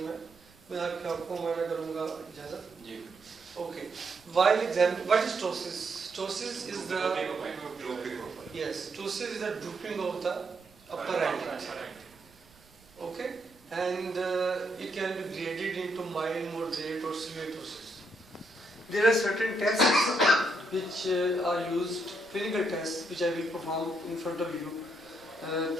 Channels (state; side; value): noise; right; rumble, 28 dB below the sound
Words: है। मैं आपको माना करूँगा इजाज़त जी। Okay, while examine what is ptosis? Ptosis is the ptosis is the drooping of the upper eyelid. Okay, and it can be graded into mild, moderate, or severe ptosis. There are certain tests which are used, clinical tests, which I will perform in front of you